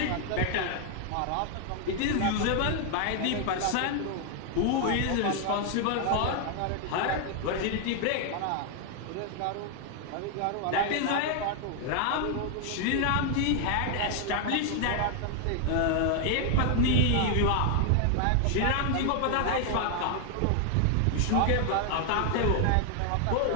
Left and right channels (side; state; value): both; different; correlation 0.00